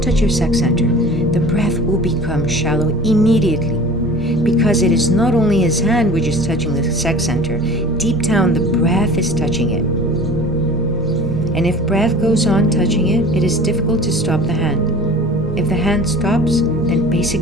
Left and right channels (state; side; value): normal; both; correlation 0.41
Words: touch your sex center, the breath will become shallow immediately. Because it is not only his hand which is touching the sex center, deep down the breath is touching it. And if breath goes on touching it, it is difficult to stop the hand. If the hand stops, then